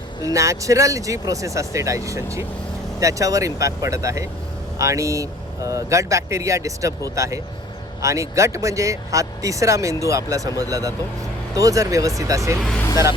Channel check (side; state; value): both; normal; correlation 0.50